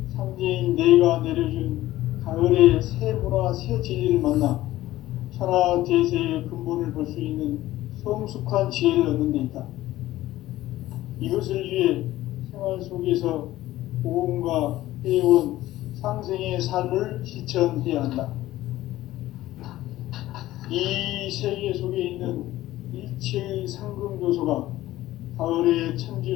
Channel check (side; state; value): right; quieter; 15.6 dB